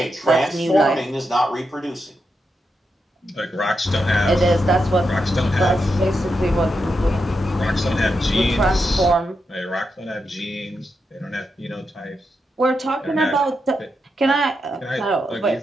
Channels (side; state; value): both; normal; correlation 0.85